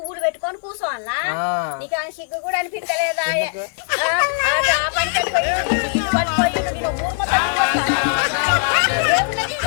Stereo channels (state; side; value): silent; right; 66 dB below the other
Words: పెట్టుకొని కూర్చోవాలా? నీకు అని సిగ్గు కూడా అనిపించలేదా?